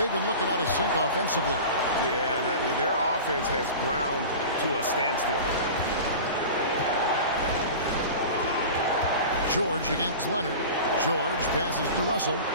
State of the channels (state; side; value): inverted; both; correlation -0.34